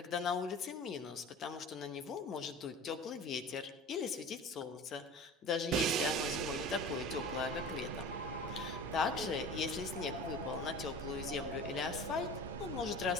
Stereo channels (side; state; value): both; normal; correlation 0.37